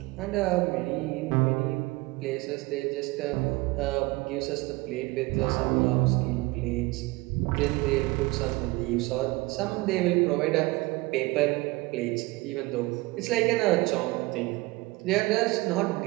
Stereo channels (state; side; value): quieter; left; 22.2 dB